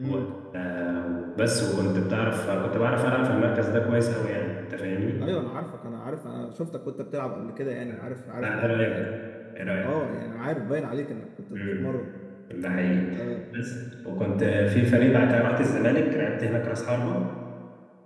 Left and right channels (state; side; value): identical; both; correlation 1.00